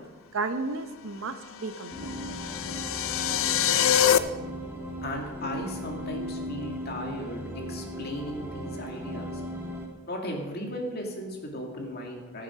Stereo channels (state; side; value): quieter; right; 4.9 dB